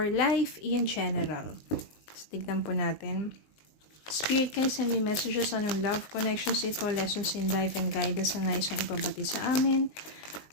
life in general. Tignan po natin. Spirit, can you send me messages on yung love connections ito, lessons in life and guidance na nais yung ipabati sa amin,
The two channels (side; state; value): right; late; 19 ms